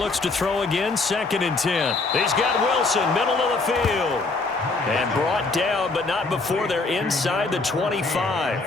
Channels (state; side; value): quieter; right; 3.6 dB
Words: to throw again, 2nd and 10. He's got Wilson, middle of the field. And brought down, but not before they're inside the